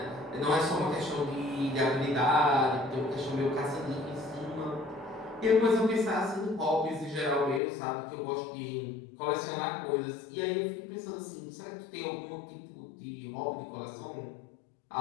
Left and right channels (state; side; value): drops out; right; at 7.6 s